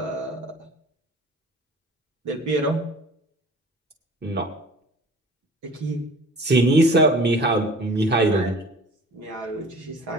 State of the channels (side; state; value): both; normal; correlation 0.46